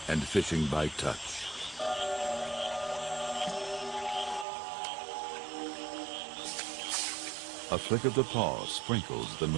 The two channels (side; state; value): left; drops out; at 4.5 s